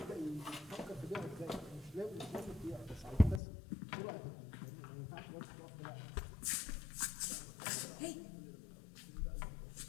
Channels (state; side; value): drops out; right; at 3.4 s